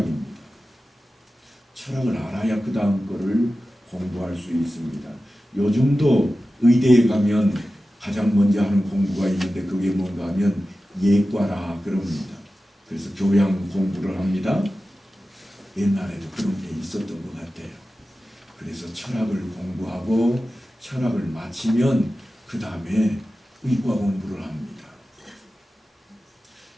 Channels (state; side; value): normal; both; correlation 0.94